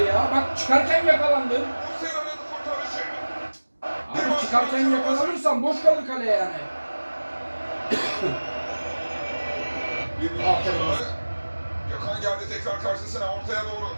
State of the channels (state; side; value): inverted; both; correlation -1.00